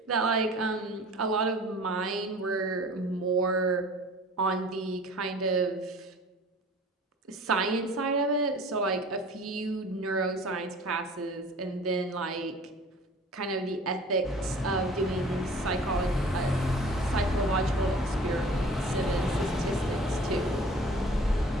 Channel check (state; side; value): normal; both; correlation 0.46